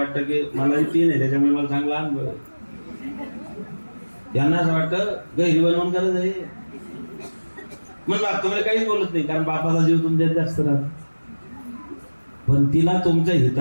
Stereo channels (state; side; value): inverted; both; correlation -1.00